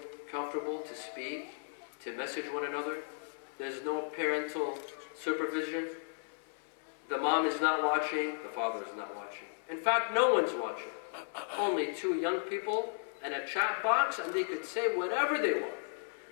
comfortable to speak, to message one another. There's no parental supervision. The mom is not watching, the father is not watching. In fact, no one's watching. Only two young people and a chat box, and they could say whatever they want.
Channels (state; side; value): silent; right; 54 dB below the other